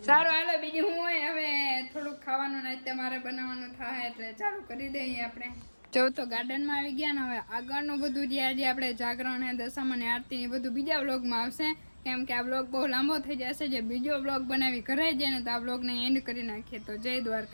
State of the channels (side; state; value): both; inverted; correlation -1.00